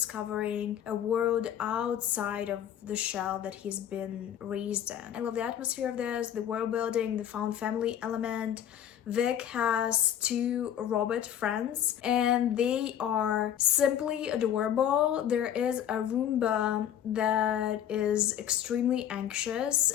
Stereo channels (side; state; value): right; quieter; 10.1 dB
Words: a world outside of the shell that he's been raised in. I love the atmosphere of this, the world building, the found family element. Vic has 2 robot friends and they are simply adorable. There is a Roomba that is extremely anxious,